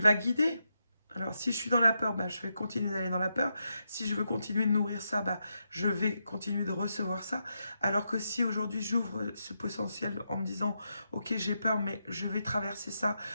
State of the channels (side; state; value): both; inverted; correlation -0.84